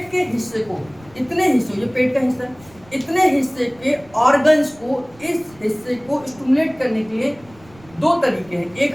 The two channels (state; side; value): noise; right; rumble, 25 dB below the sound